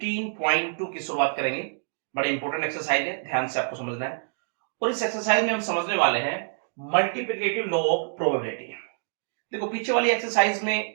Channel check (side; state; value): left; silent; digital silence